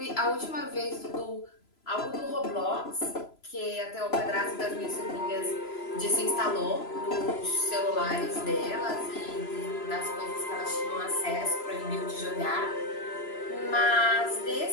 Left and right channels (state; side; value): late; right; 3.0 ms